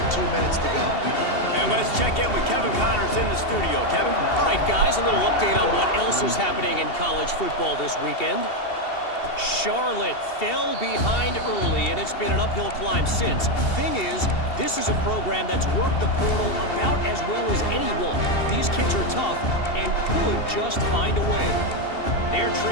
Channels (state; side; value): late; right; 2.7 ms